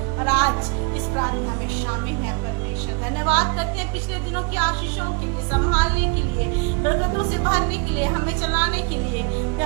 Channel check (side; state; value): left; quieter; 32.3 dB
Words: और आज इस प्रार्थना में शामिल है परमेश्वर। धन्यवाद करते हैं पिछले दिनों की आशीषों के लिए, संभालने के लिए, बरकतों से भरने के लिए, हमें चलाने के लिए।